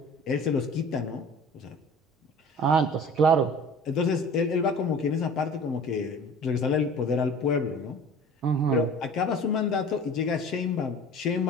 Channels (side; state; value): both; normal; correlation 0.43